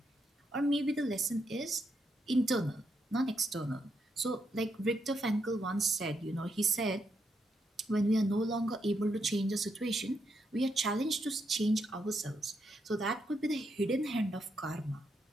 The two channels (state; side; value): normal; both; correlation 0.80